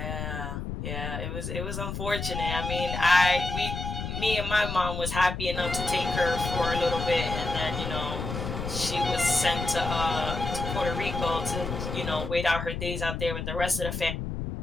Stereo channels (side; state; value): left; noise; rumble, 5 dB below the sound